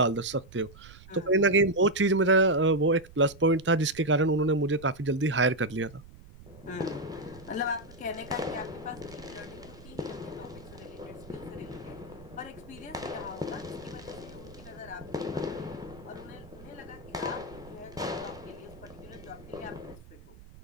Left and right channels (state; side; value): noise; right; rumble, 19 dB below the sound